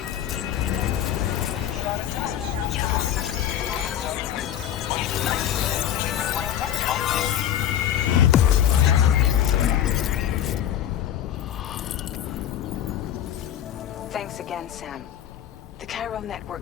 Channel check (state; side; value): quieter; right; 10.7 dB